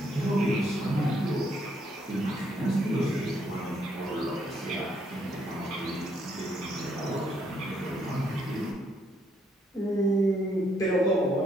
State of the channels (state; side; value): normal; both; correlation 0.72